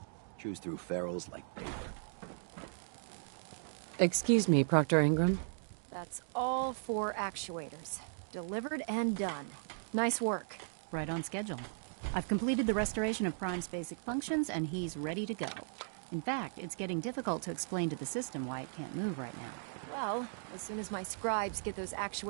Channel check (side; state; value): left; silent; digital silence